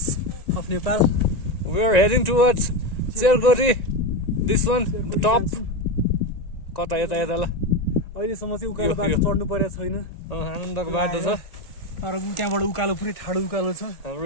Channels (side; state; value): right; late; 1.9 ms